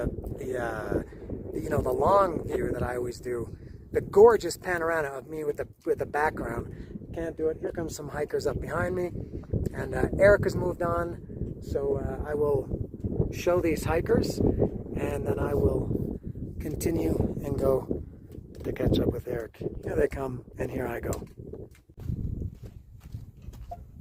long view that I always do. The gorgeous panorama of me with the background. Can't do it. Here comes some hikers up behind me, and Eric has moved on. So I will show these hikers, and then I will continue and go to catch up with Eric. Here they come, and here I go.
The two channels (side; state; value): both; identical; correlation 1.00